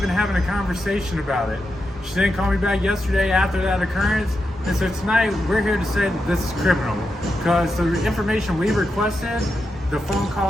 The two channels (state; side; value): normal; both; correlation 0.87